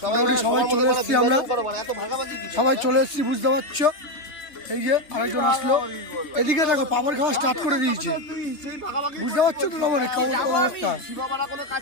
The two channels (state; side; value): late; right; 3.2 ms